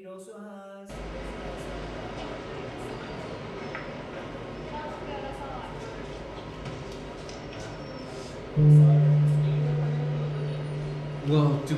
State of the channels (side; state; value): both; identical; correlation 1.00